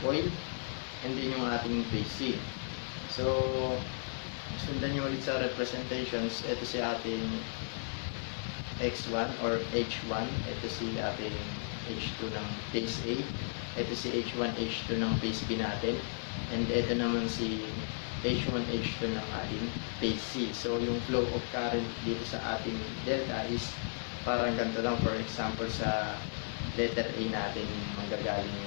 and then yung ating phase C. So sundan nyo ulit sa representations. Ito si ating X1 or H1, ito si ating H2 ng phase A, ito si H1, H2 ng phase B natin, and ito naman si H1, H2 ng ating phase C. So yung flow of current dito sa ating delta is parang ganito lang. For example, sa letter A natin manggagaling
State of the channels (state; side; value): silent; right; digital silence